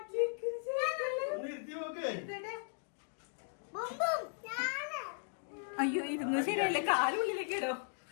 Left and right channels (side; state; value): right; silent; 53 dB below the other